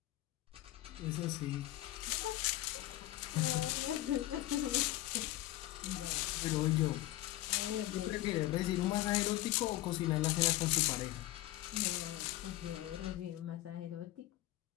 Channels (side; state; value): right; quieter; 16.2 dB